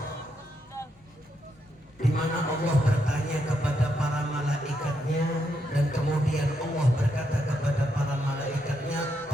di mana Allah bertanya kepada para malaikatnya, dan kemudian Allah berkata kepada para malaikatnya,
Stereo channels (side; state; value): both; normal; correlation 0.80